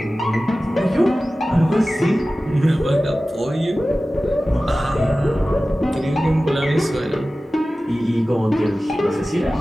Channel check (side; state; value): both; normal; correlation 0.96